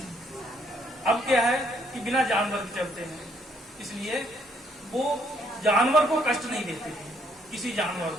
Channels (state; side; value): normal; both; correlation 0.69